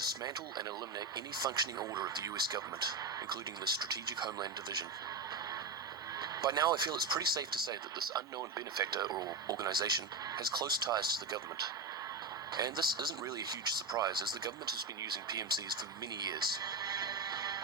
and eliminate any functioning order of the US government, including the Strategic Homeland Division. By now, I feel it's pretty safe to say that this unknown benefactor or organization has close ties to the government. And this isn't really a huge surprise, as the government has been using PMCs for many years.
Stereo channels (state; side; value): quieter; left; 3.8 dB